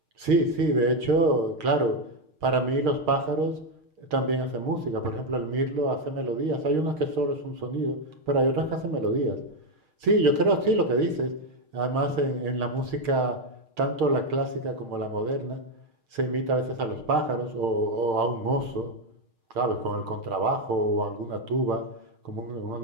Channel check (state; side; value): late; left; 6.5 ms